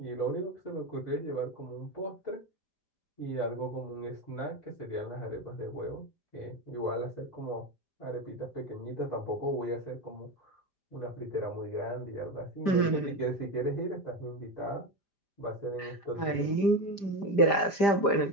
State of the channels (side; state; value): right; late; 5.0 ms